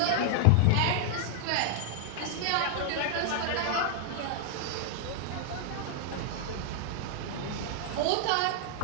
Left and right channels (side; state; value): both; different; correlation -0.01